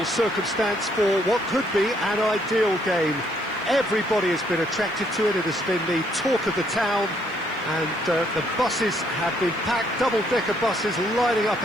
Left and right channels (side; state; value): left; noise; hiss, 30 dB below the sound